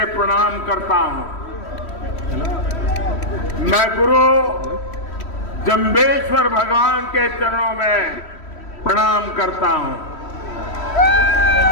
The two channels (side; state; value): right; late; 3.1 ms